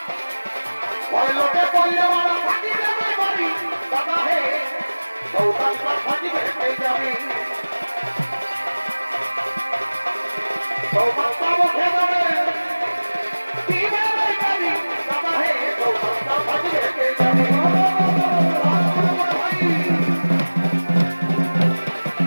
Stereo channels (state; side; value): inverted; both; correlation -1.00